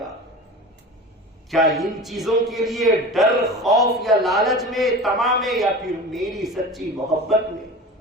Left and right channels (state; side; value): normal; both; correlation 0.34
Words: کیا ان چیزوں کے لیے ڈر, خوف یا لالچ میں, طمع میں, یا پھر میری سچی محبت میں